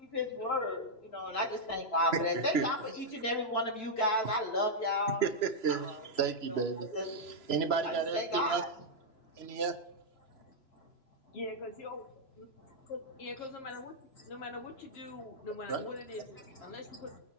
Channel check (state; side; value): late; right; 3.0 ms